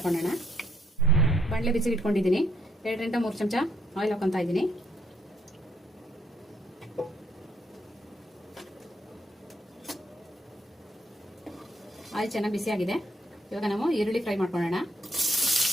ಬಾಣಲೆ ಬಿಸಿಗೆ ಇಟ್ಕೊಂಡಿದ್ದೀನಿ. 2 ರಿಂದ 3 ಚಮಚ ಆಯಿಲ್ ಹಾಕೊತಾ ಇದ್ದೀನಿ. ಆಯಿಲ್ ಚೆನ್ನಾಗಿ ಬಿಸಿ ಆಗಿದೆ. ಇವಾಗ ನಾವು ಈರುಳ್ಳಿ ಫ್ರೈ ಮಾಡ್ಕೊಳ್ಳೋಣ.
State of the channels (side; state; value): both; normal; correlation 0.73